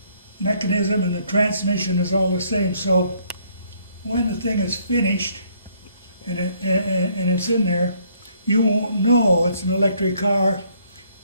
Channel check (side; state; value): both; inverted; correlation -0.66